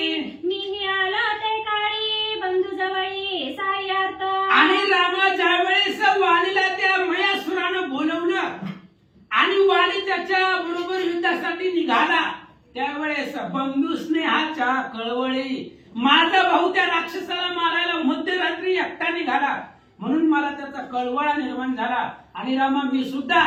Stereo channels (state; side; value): identical; both; correlation 1.00